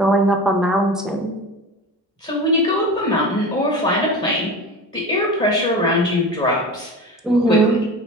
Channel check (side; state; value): both; normal; correlation 0.31